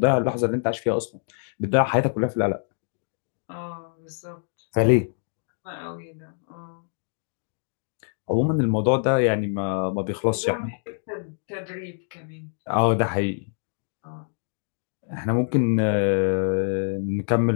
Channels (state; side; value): silent; right; digital silence